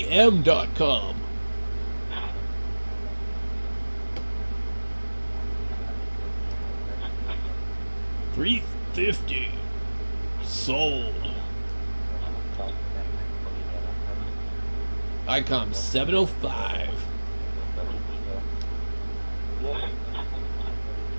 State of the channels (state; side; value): inverted; both; correlation -1.00